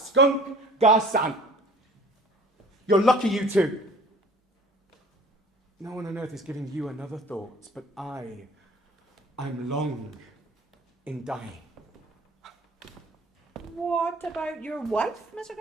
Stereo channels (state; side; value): normal; both; correlation 0.48